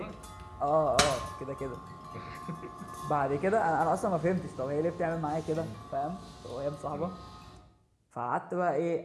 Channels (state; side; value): identical; both; correlation 1.00